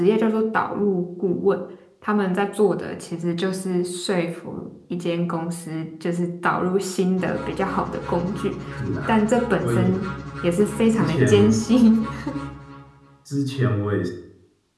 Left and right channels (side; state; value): both; identical; correlation 1.00